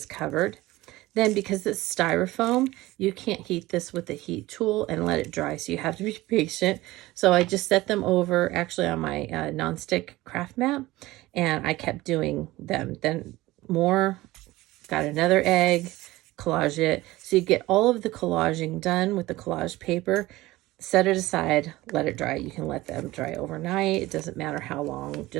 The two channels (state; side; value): quieter; left; 18.5 dB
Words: covered. Then, because it's styrofoam, you can't heat this with a heat tool and let it dry, so you have to be patient. So I just set them over actually on my nonstick craft mat, and I kept doing them. Then more, got another egg, collage it. So you get all of the collaging done with the collage paper, set it aside, let it dry. You can let them dry overnight. It doesn't matter how long,